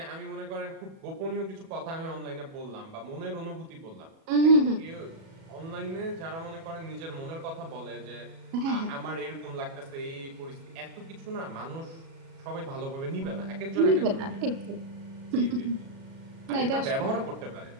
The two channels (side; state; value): left; late; 37 ms